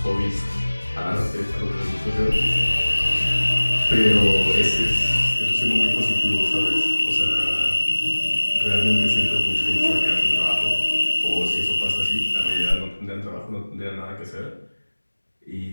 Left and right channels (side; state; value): both; inverted; correlation -1.00